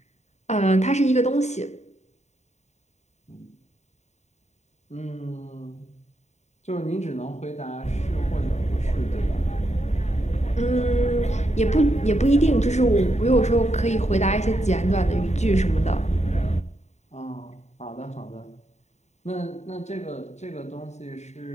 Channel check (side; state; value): right; late; 0.33 ms